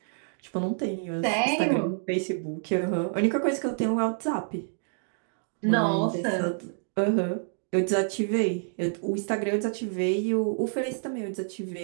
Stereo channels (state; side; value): silent; left; digital silence